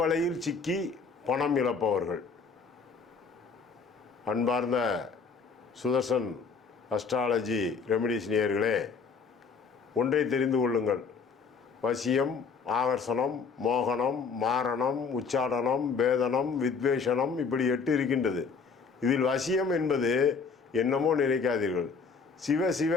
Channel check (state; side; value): quieter; right; 5.2 dB